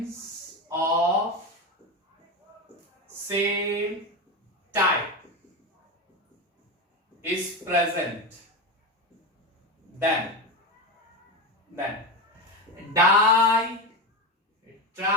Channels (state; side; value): normal; both; correlation 0.17